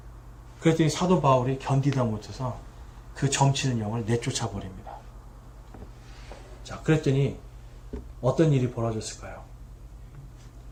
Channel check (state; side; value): identical; both; correlation 1.00